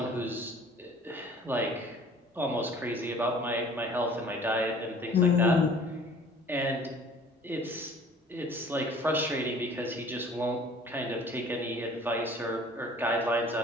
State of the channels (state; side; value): normal; both; correlation 0.50